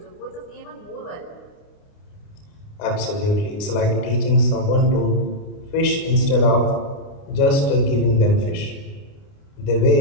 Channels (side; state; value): right; late; 29 ms